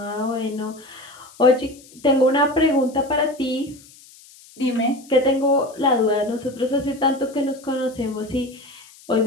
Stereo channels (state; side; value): noise; left; hiss, 23 dB below the sound